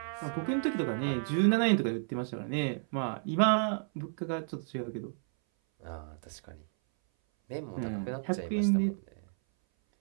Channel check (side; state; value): left; silent; 57 dB below the other